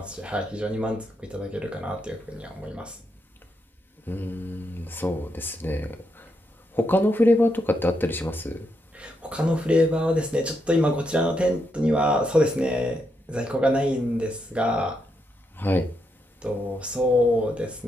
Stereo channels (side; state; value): both; normal; correlation 0.81